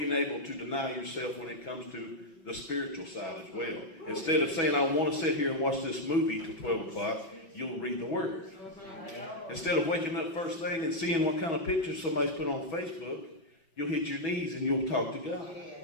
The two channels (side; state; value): right; late; 6.1 ms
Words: able to deny yourself when it comes to the spiritual side as well. Instead of saying, I want to sit here and watch this movie till 12 o'clock, you'll read the Word. Instead of waking up first thing and seeing what kind of pictures somebody's put on Facebook, you'll hit your knees and you'll talk to God.